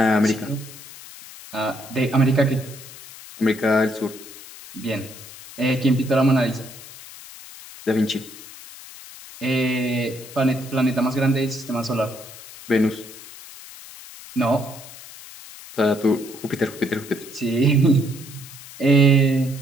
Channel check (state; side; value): noise; left; hiss, 17 dB below the sound